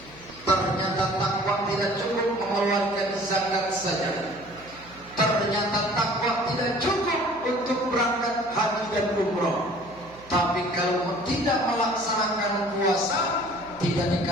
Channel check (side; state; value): right; noise; hum, 22 dB below the sound